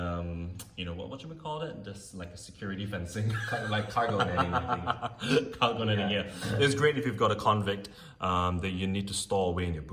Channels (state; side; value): identical; both; correlation 1.00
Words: what should we call it? Just like a security fencing. Kind of like cargo netting, I think. Cargo netting, yeah. It's great if you've got a convict that you need to store away in your